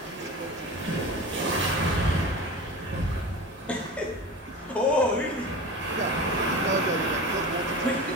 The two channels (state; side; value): normal; both; correlation 0.31